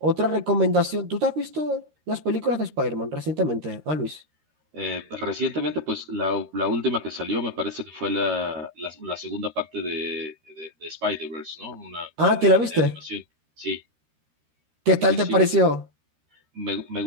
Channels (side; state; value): left; late; 13 ms